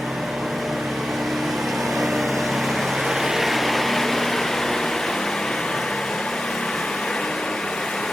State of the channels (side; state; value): both; normal; correlation 0.92